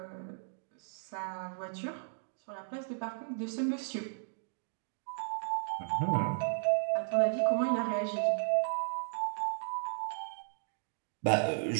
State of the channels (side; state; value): left; silent; digital silence